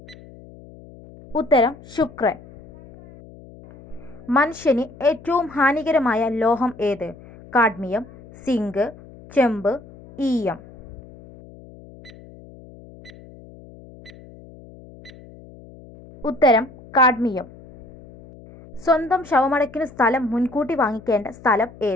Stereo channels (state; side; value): noise; left; hum, 20 dB below the sound